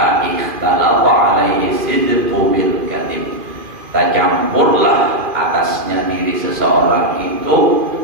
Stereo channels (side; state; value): left; late; 2.4 ms